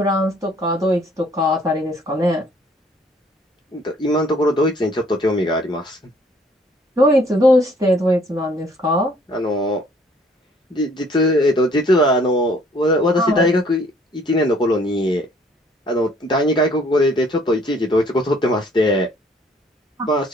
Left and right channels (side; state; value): both; normal; correlation 0.60